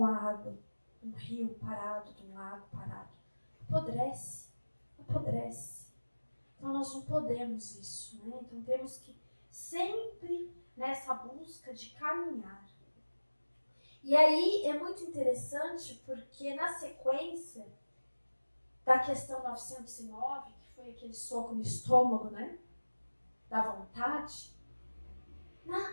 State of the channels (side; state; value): both; inverted; correlation -1.00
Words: a água? Um rio parado, de um lago parado. Apodrece. Então nós não podemos isso, né? Então temos que sempre nessa busca de caminhar. E aí é muito interessante porque na sequência da questão 909, que foi aquele soco no estômago, né? Da vontade,